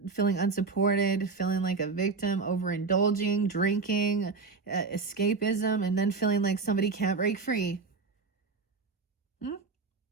feeling unsupported, feeling like a victim, overindulging, drinking, escapism, and then feeling like somebody can't break free.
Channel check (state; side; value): quieter; left; 4.4 dB